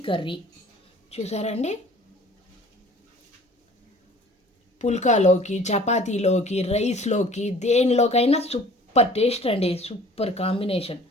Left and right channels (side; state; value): both; normal; correlation 0.49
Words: కర్రీ చూసారండి. పుల్కాలోకి, చపాతీలోకి, రైస్లోకి, దేనిలోకైనా సూపర్ టేస్ట్ అండి. Super combination.